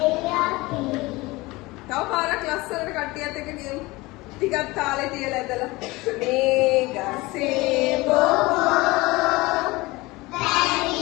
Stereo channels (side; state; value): right; quieter; 21.7 dB